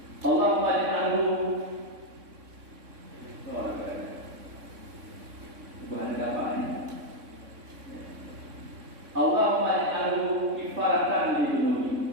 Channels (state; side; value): late; left; 3.6 ms